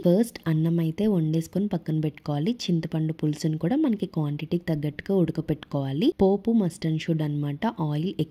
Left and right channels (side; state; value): both; identical; correlation 1.00